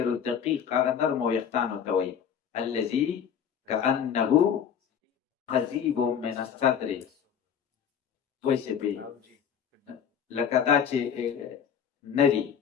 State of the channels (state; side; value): quieter; right; 8.0 dB